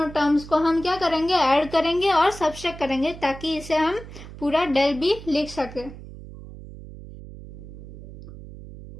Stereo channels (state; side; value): noise; right; hum, 14 dB below the sound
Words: टर्म्स को हम क्या करेंगे, ऐड करेंगे और सब्ट्रैक्ट करेंगे, ताकि इसे हम पूरा डेल बी लिख सके।